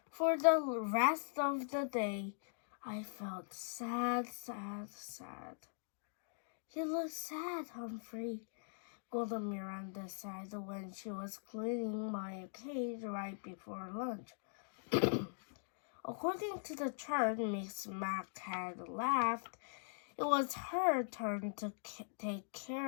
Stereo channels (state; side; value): silent; right; digital silence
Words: For the rest of the day, I felt sad. You look sad, Humphrey, Golden Miranda said when she was cleaning my cage right before lunch. According to the chart Miss Mac had laughed, it was her turn to take